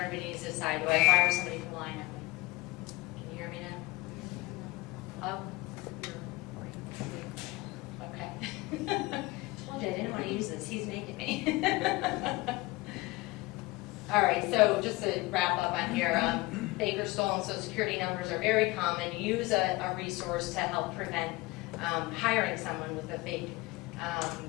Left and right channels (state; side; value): quieter; right; 21.1 dB